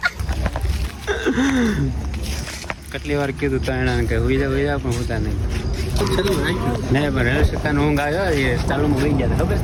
કેટલી વાર કીધું તો એને કે હુઈ જા પણ હોતા નહીં. નહીં પણ રેલ સત્તાનો ઊંઘ આવ્યો, એ ચાલુમાં હોઈ ગયા ખબર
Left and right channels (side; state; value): both; identical; correlation 1.00